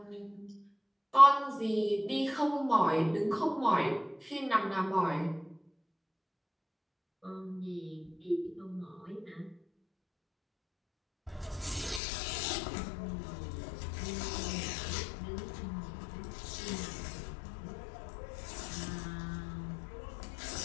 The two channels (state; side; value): drops out; right; at 12.0 s